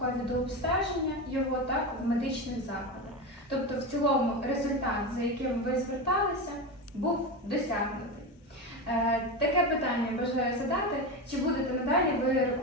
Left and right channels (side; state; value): both; normal; correlation 0.19